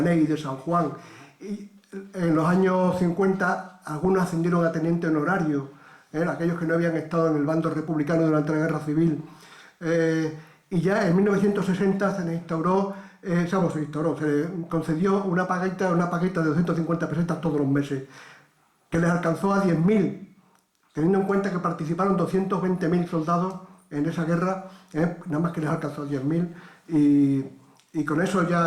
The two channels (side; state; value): both; identical; correlation 1.00